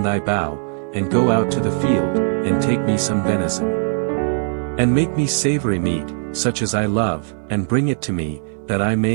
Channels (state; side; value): silent; left; 60 dB below the other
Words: thy bow, and go out to the field, and take me some venison. And make me savory meat, such as I love, and bring it to me, that I